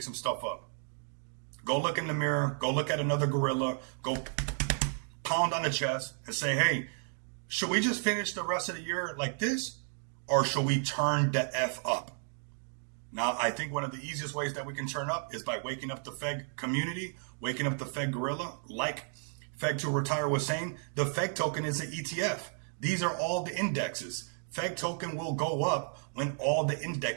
some stuff up? Go look in the mirror. Go look at another gorilla. Go pound on the chest and say, hey, should we just finish the rest of the year like this, or should we turn the F up? Now, I think one of the easiest ways that we can turn up is by waking up the FEG community, waking up the FEG gorilla. Like FEG to Retire was saying, the FEG token is an ETF. These are all the indexes. FEG token will go up when all the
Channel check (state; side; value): silent; left; 56 dB below the other